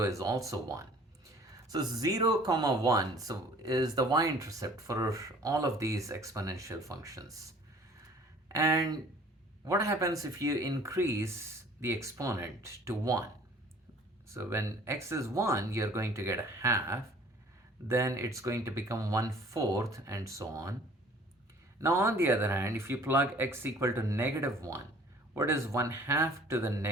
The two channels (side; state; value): both; normal; correlation 0.52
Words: is also 1. So 0, 1 is the y-intercept for all of these exponential functions. And what happens if you increase the exponent to 1? So when x is 1, you're going to get 1/2. Then it's going to become 1/4 and so on. Now on the other hand, if you plug x equal to -1, what is 1/2 to the